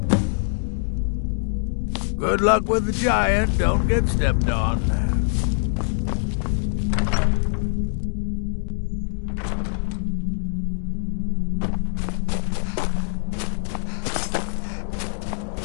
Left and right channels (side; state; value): right; silent; digital silence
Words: Good luck with the giant. Don't get stepped on.